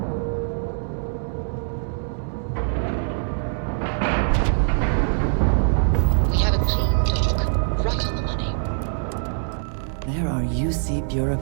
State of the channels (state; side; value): silent; left; digital silence